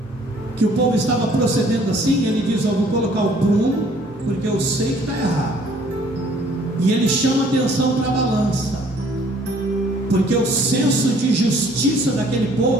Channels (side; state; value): both; normal; correlation 0.58